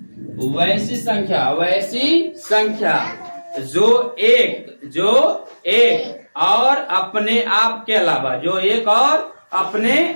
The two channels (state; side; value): inverted; both; correlation -1.00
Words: वैसी संख्या, वैसी संख्या जो एक और अपने आप के अलावा, जो एक और अपने